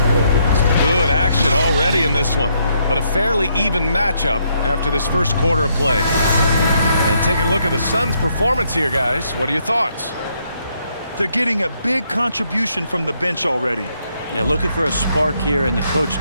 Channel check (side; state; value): both; inverted; correlation -0.74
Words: Good action already in this one, but a fairly even matchup after this first quarter of play. And taking a look at the Suns' performance here, guys. What are your thoughts? They're getting a big contribution from the bench already. Yeah, looking for a spark here, and the coach